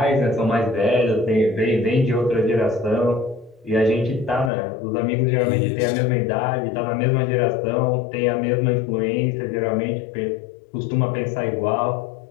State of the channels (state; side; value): drops out; right; at 4.5 s